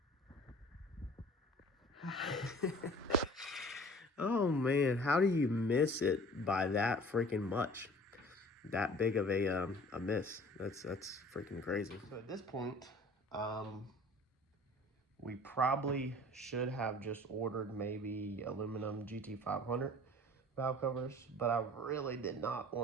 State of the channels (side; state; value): both; normal; correlation 0.47